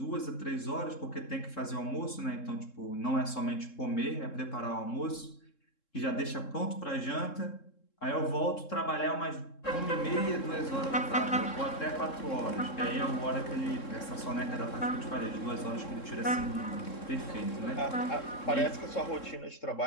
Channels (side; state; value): right; late; 3.7 ms